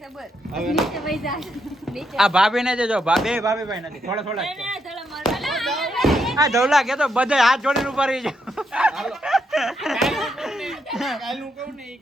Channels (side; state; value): both; normal; correlation 0.79